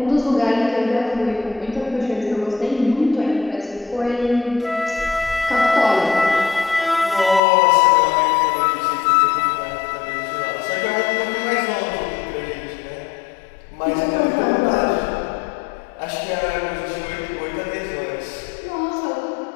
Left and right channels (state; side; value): drops out; right; at 7.4 s